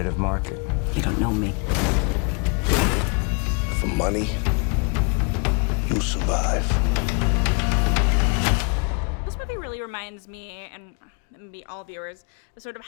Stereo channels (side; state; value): right; quieter; 34.3 dB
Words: market. You don't know me. For money, you'll survive. This movie really reminds me, and maybe all viewers, sort of